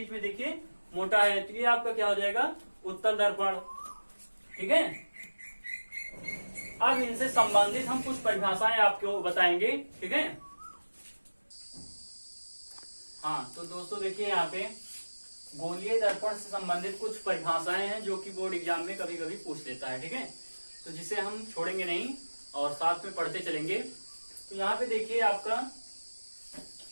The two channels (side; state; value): both; inverted; correlation -1.00